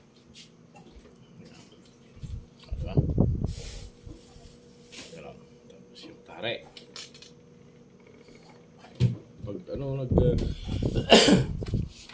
Diba? Yan. Tapos yung tare. Pag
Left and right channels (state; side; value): identical; both; correlation 1.00